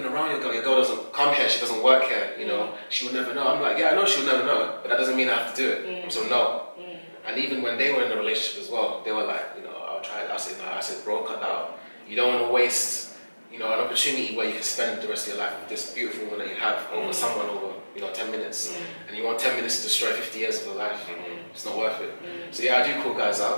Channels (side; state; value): both; inverted; correlation -1.00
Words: around your girl. Your girl doesn't come here. She doesn't work here. She will never know. I'm like, yeah, I know she will never know, but that doesn't mean I have to do it. So no. And even when they were in a relationship as well, they were like, I'll try it. I said no. I said, bro, cut that out. You don't want to waste an opportunity where you can spend the rest of your life with this beautiful woman that you have over someone over 10 minutes, and you want 10 minutes to destroy 50 years of your life. It's not worth it. So yeah, I do call guys